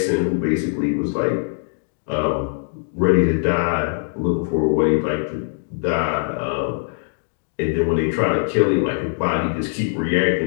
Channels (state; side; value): silent; right; digital silence